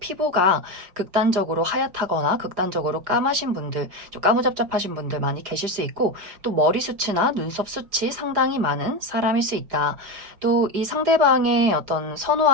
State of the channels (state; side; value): late; left; 4.9 ms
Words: 극단적으로 하얗다거나 극단적으로 까마신 분들, 좀 까무잡잡하신 분들 많이 계실 수 있고 또 머리숱이나 눈썹 숱이 상당히 많은 사람일 수 있다. 또 이 상대방의 어떤